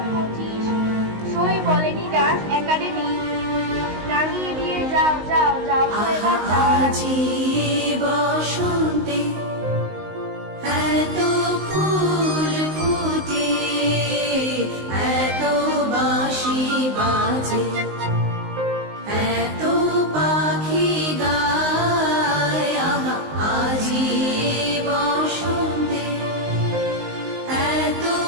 সই বলেনি ডাক একাডেমি, রাঙিয়ে দিয়ে যাও যাও যাও তো এবার যাও। আজি বসন্তে এত ফুল ফুটে, এত বাঁশি বাজে, এত পাখি গায়। আহা আজি বসন্তে এত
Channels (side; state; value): left; late; 19 ms